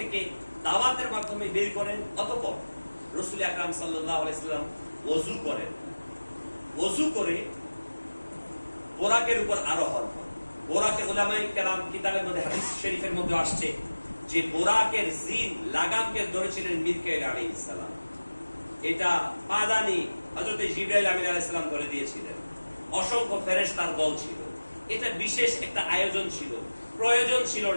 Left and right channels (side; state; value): both; inverted; correlation -1.00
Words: দাওয়াতের মাধ্যমে বের করেন। অতঃপর রাসূল আকরাম সাল্লাল্লাহু আলাইহি ওয়াসাল্লাম ওযু করেন। ওযু করে বোরাকের উপর আরোহণ করেন। বোরাকে উলামায়ে কেরাম কিতাবের মধ্যে, হাদিস শরীফের মধ্যে আসছে যে বোরাকের জিন লাগামকে ধরেছিলেন মিকাইল আলাইহিস সালাম। এটা পাদানি হযরত জিবরাইল আমিন আলাইহিস সালাম ধরে দিয়েছিলেন। অসংখ্য ফেরেশতার দল ছিল। এটা বিশেষ একটা আয়োজন ছিল, প্রয়োজন ছিল